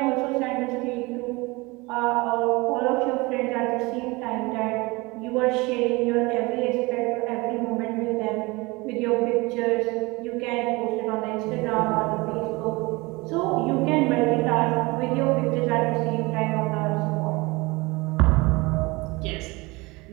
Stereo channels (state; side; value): quieter; left; 24.1 dB